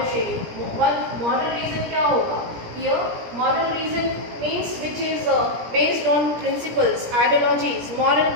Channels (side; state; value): left; late; 17 ms